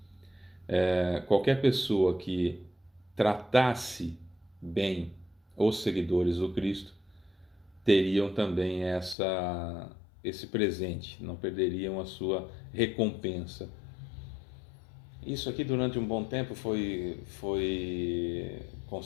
Qualquer pessoa que tratasse bem os seguidores do Cristo teriam também esse presente, não perderiam a sua recompensa. Isso aqui durante um bom tempo foi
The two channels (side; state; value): right; drops out; at 9.2 s